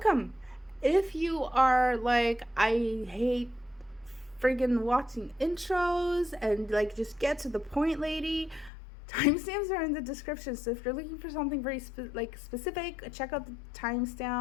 If you are like, I hate friggin' watching intros and like just get to the point, lady, timestamps are in the description. So if you're looking for something very specific, check out the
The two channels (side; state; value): right; drops out; at 8.7 s